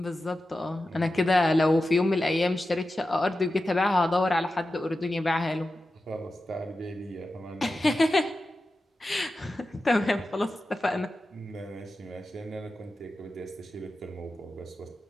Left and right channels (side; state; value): both; normal; correlation 0.92